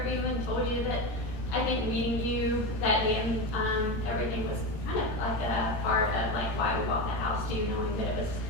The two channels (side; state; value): right; late; 13 ms